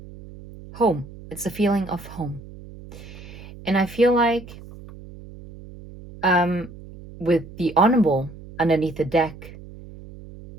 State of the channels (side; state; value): right; noise; hum, 17 dB below the sound